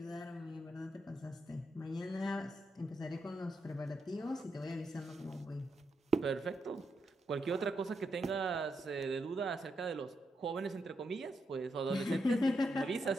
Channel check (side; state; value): both; normal; correlation 0.82